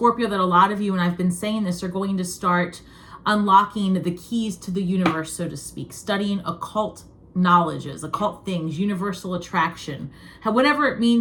that a lot of you, and I've been saying this, are going to start unlocking the keys to the universe, so to speak, studying occult knowledges, occult things, universal attraction, whatever it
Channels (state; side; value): identical; both; correlation 1.00